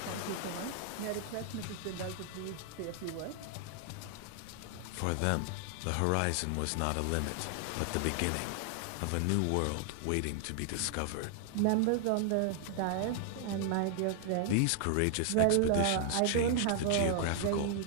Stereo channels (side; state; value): both; different; correlation 0.00